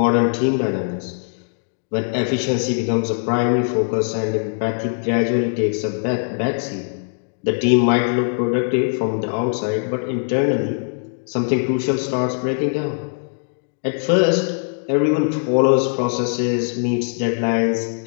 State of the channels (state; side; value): silent; right; digital silence